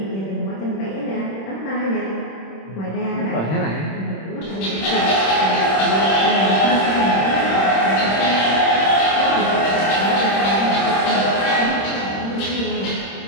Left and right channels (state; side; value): late; right; 26 ms